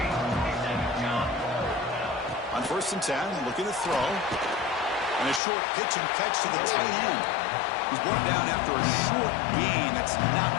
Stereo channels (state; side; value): drops out; right; at 5.4 s